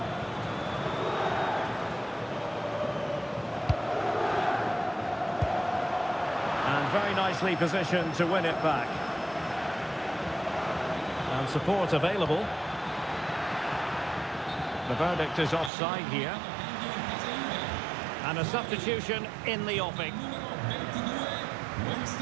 And very nicely positioned to win it back. And support available. The verdict is offside here. And a substitution in the offing. Numero 22,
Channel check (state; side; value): drops out; left; at 15.7 s